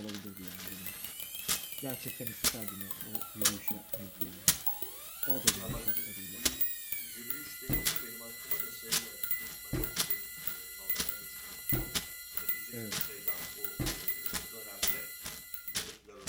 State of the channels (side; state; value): both; identical; correlation 1.00